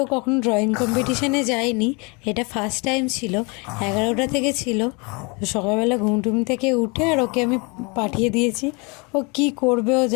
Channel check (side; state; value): right; quieter; 30.1 dB